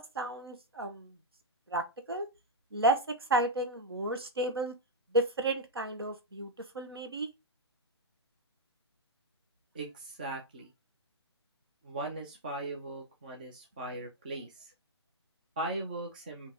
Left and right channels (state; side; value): normal; both; correlation -0.01